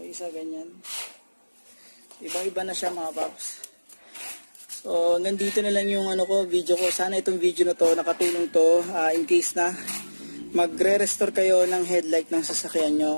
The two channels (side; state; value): both; inverted; correlation -1.00